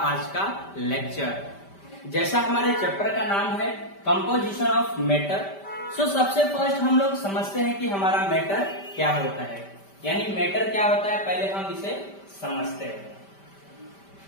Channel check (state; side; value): late; right; 5.1 ms